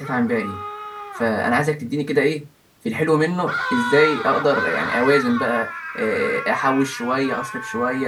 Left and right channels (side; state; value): both; identical; correlation 1.00